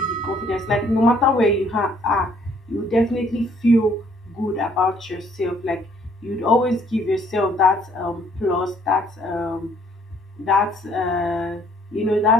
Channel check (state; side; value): normal; both; correlation 0.62